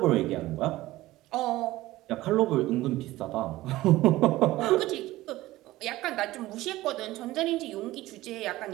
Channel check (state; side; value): quieter; left; 17.1 dB